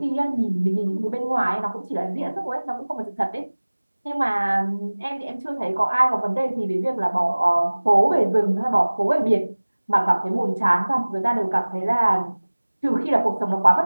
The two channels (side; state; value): both; inverted; correlation -1.00